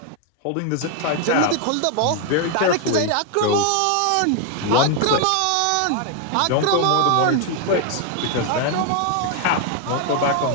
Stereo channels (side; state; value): both; different; correlation 0.01